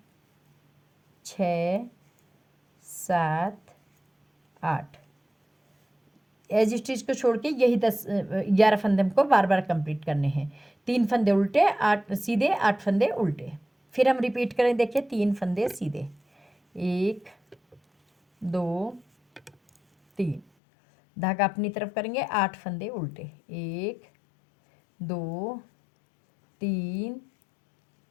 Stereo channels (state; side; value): drops out; right; at 20.5 s